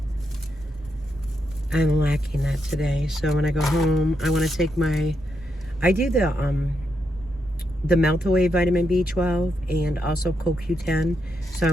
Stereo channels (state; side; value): normal; both; correlation 0.82